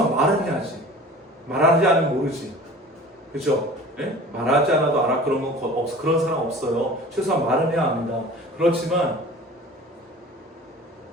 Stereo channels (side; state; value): both; normal; correlation 0.42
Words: 말은 해야지. 말하지 않으면 모르지. 그죠? 예? 말하지 않아도 알아 그런 건 그런 사람 없어요. 최소한 말은 해야 합니다. 그렇지만